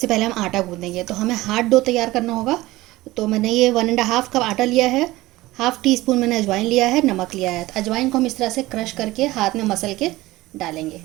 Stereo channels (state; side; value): quieter; left; 18.5 dB